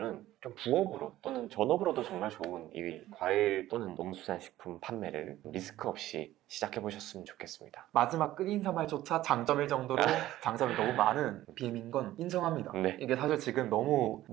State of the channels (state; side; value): quieter; left; 14.8 dB